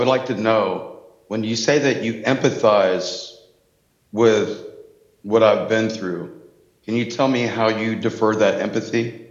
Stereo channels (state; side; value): identical; both; correlation 1.00